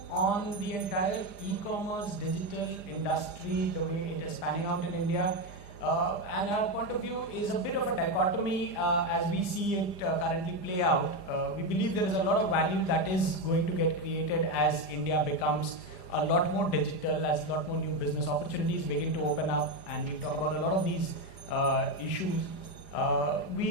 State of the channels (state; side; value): late; right; 5.0 ms